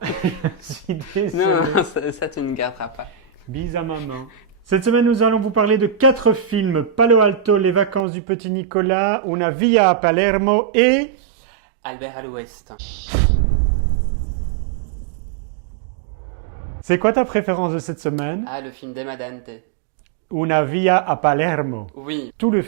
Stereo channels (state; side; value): drops out; left; at 8.1 s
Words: je suis Non, désolé. ça tu ne garderas pas. Bis à maman. Cette semaine, nous allons vous parler de 4 films. Palo Alto, Les vacances du petit Nicolas, Una via a Palermo et... Albert à l'ouest. C'est quoi ta préférence de cette semaine? Ah, le film d'Emma Dante. Una via a Palermo. Oui, Tout le